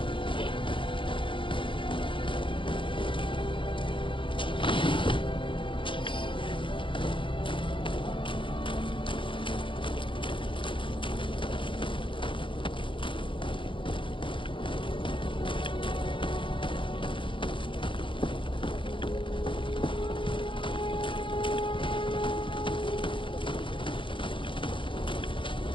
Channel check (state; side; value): late; right; 0.25 ms